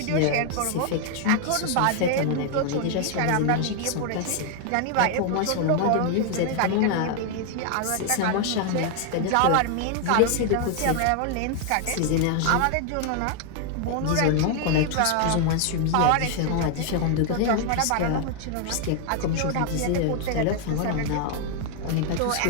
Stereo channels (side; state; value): both; different; correlation 0.00